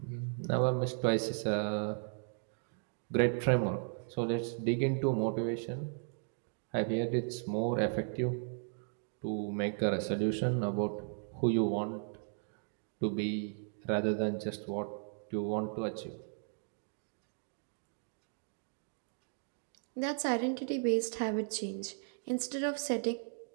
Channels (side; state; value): left; silent; 54 dB below the other